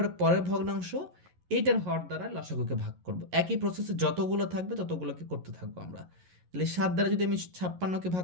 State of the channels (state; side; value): late; left; 11 ms